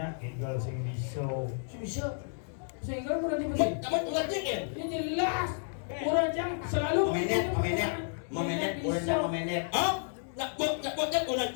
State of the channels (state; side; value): silent; right; digital silence